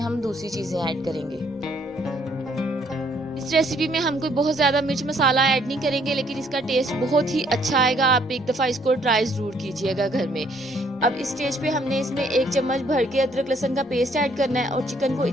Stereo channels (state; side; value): normal; both; correlation 0.66